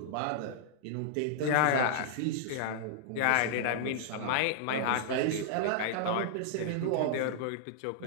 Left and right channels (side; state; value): both; different; correlation -0.01